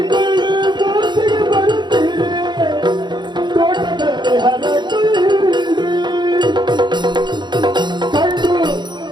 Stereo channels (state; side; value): late; left; 0.21 ms